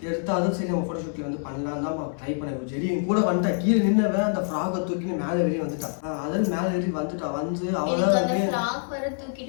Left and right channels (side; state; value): right; silent; 61 dB below the other